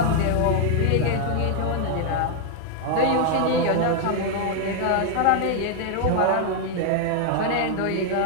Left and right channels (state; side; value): different; both; correlation 0.00